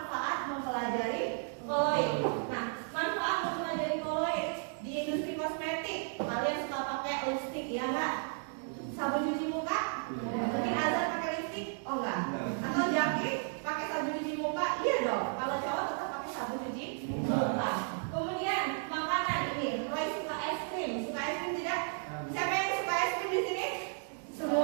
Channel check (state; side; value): silent; left; 55 dB below the other